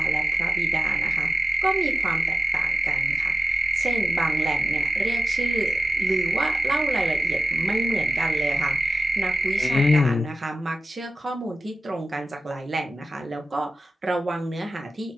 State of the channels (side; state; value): both; normal; correlation 0.92